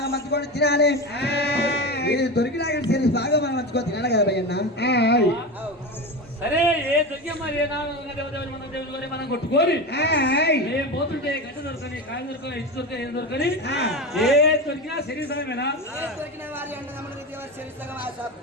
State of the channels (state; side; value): normal; both; correlation 0.23